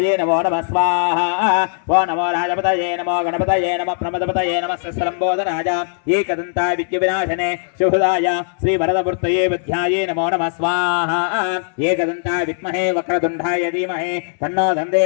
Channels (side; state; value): right; silent; 67 dB below the other